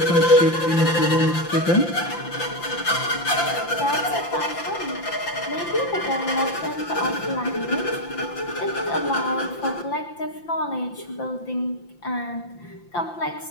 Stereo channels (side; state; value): right; late; 5.8 ms